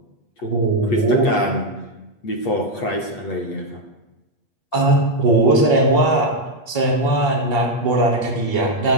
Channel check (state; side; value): late; right; 8.4 ms